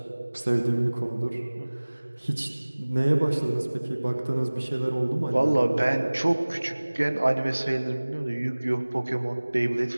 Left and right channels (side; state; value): both; inverted; correlation -1.00